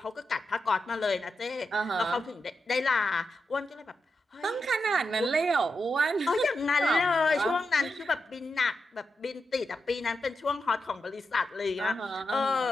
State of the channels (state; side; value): normal; both; correlation 0.87